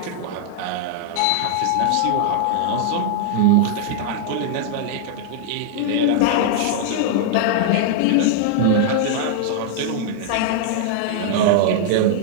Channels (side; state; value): both; different; correlation -0.01